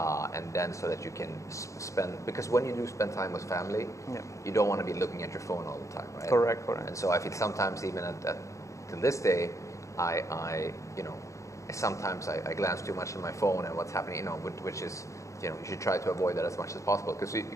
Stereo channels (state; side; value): late; right; 0.15 ms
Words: then so that you can spend, because when you do spend time with family, you don't want to be looking at your phone all the time, right? Correct. And so I feel sometimes even to this day, I you know, sometimes I glance too much at my phone and what's happening, you know, which is, you know, you should try to avoid that as much as possible,